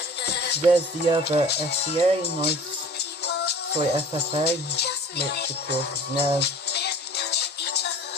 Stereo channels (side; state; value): both; normal; correlation 0.45